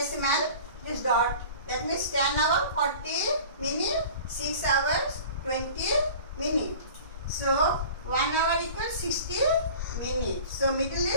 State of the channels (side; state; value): both; inverted; correlation -0.42